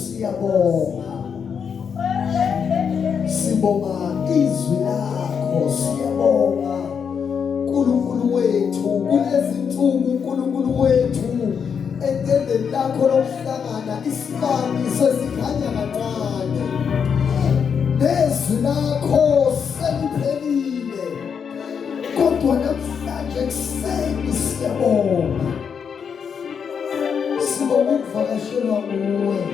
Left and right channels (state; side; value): quieter; right; 6.8 dB